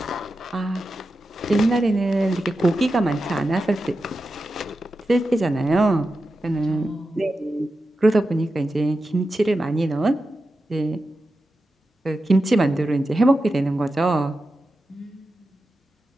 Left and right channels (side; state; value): both; normal; correlation 0.91